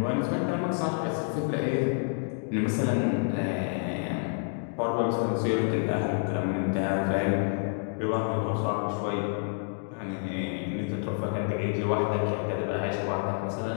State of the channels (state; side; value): silent; right; 59 dB below the other